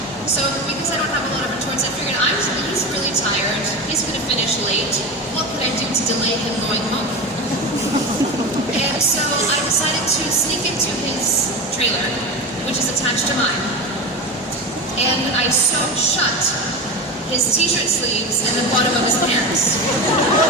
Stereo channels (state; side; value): normal; both; correlation 0.24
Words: So because I don't have a lot of retorts, I figured he's really tired. He's going to finish late. What could I do to delay him going home? And so I decided to sneak into his trailer, which is attached to mine, and I sewed shut his t-shirt sleeves and the bottom of his pants.